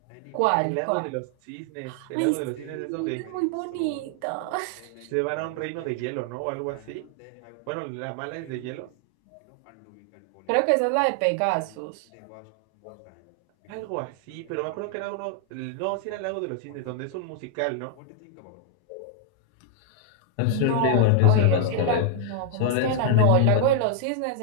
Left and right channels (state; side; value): different; both; correlation 0.00